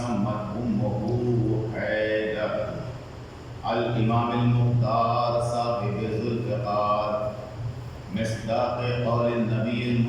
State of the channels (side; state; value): both; identical; correlation 1.00